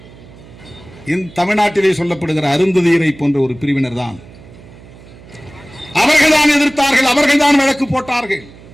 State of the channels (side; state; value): right; noise; hum, 21 dB below the sound